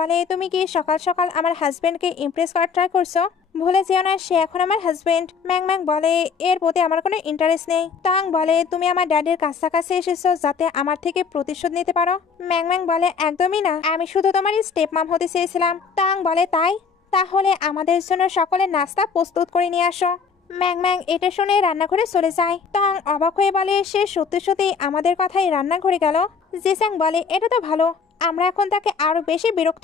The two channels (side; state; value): right; quieter; 5.8 dB